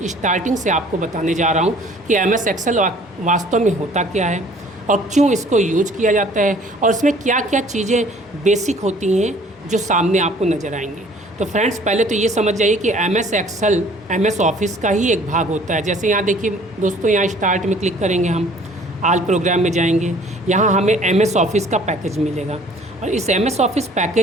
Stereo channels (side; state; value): both; normal; correlation 0.54